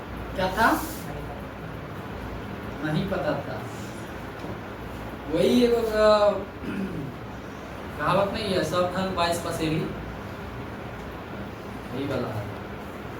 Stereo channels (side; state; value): both; identical; correlation 1.00